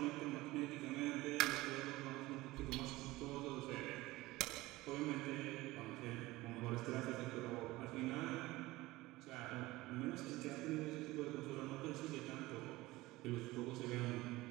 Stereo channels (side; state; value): left; quieter; 19.2 dB